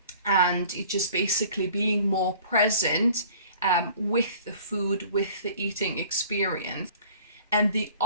it just basically being more present with the food, with the eating experience. And the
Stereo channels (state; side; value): inverted; both; correlation -0.49